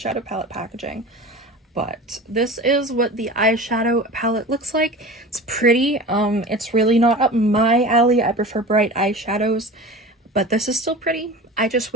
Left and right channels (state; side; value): normal; both; correlation 0.35